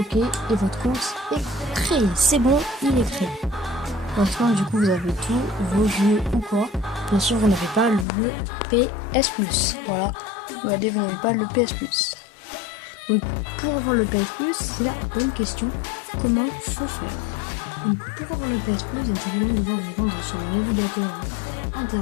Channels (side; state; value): right; drops out; at 8.1 s